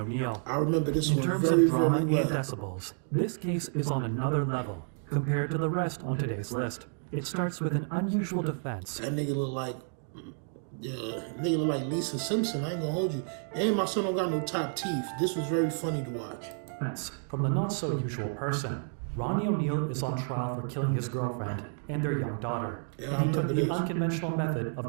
I remember this In one terms very, of drama very and well. decibels, this case is on another level compared to the rest on today's list. It starts with an unusual defense. That nigga look like, Lisa Simpson. I ain't gonna hold you. And my son don't got no top teeth. This was very funny to watch. From the not-so-usual person. Ronnie O'Neill is on trial for killing his girlfriend and their young daughter, Yeah, and he I took remember the this. unconventional method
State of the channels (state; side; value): silent; left; 57 dB below the other